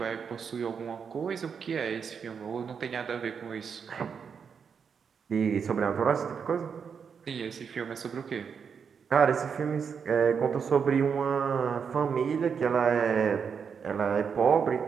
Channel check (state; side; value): quieter; left; 6.5 dB